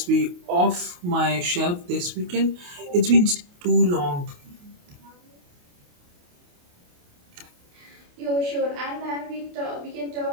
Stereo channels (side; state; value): left; late; 28 ms